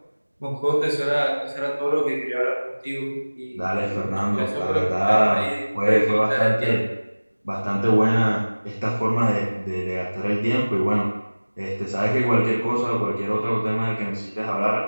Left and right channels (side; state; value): both; inverted; correlation -1.00